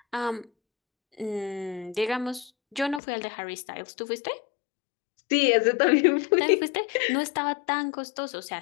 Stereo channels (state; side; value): drops out; right; at 3.0 s